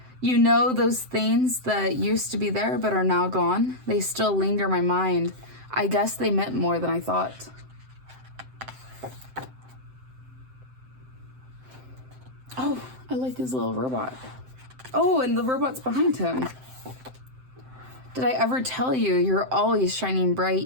You know, those things that used to be there but are now gone, they still linger in my mind. I guess they meant more than I thought. Oh, I like this little robot. Oh, and the robot's behind him. Did I ever tell you you're always shining bright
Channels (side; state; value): left; late; 7.7 ms